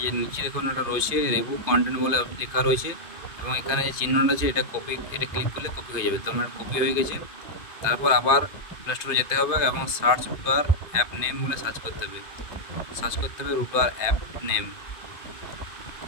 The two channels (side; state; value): right; late; 2.5 ms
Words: যে নিচে দেখুন একটা রয়েছে রিভিউ কন্টেন্ট বলে লেখা রয়েছে, এবং এখানে যে চিহ্নটা আছে এটা কপি, এটা ক্লিক করলে কপি হয়ে যাবে। তো আমার কপি হয়ে গেছে। তারপর আবার প্লে স্টোরে যেতে হবে এবং সার্চ রুটার অ্যাপ নেম বলে সার্চ করতে হবে, রুটার অ্যাপ নেম,